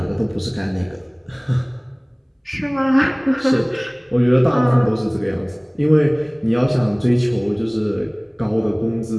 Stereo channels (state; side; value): identical; both; correlation 1.00